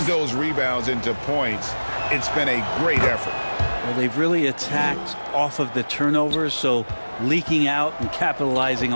those rebounds into points. It's been a great effort. Well, they've really attacked off of the turnovers, so leaking out and capitalizing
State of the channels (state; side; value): inverted; both; correlation -1.00